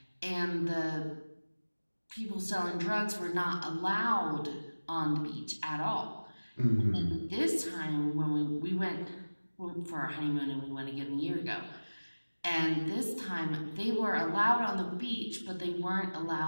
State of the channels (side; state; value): both; inverted; correlation -1.00